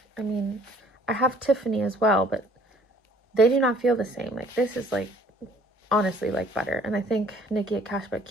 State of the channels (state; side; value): normal; both; correlation 0.57